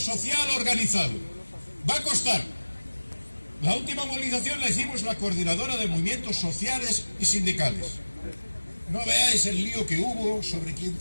organizado. Va a costar. La última movilización la hicimos la coordinadora de movimientos sociales y sindicales. No veáis el lío que hubo sobre quién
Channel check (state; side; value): inverted; both; correlation -1.00